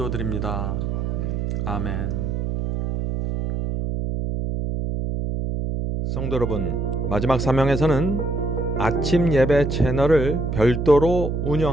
아멘. 성도 여러분, 마지막 사명에서는 아침 예배 채널을 별도로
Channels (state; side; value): noise; right; hum, 2 dB below the sound